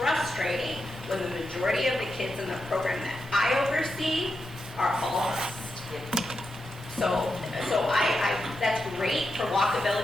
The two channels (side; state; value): both; normal; correlation 0.87